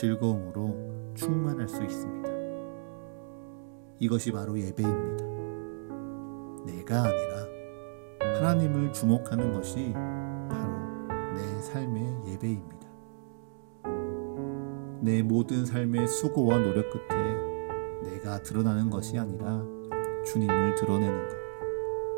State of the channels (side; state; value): left; silent; digital silence